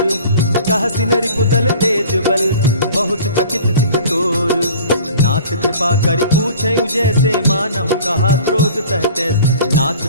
कहसिन रिपुदल तेज बल, बहुत चकित चित तोर। नाथ कृपा करि पूछे जैसे, मानहु कहा क्रोध तह तैसे। नाथ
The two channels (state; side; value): inverted; both; correlation -0.44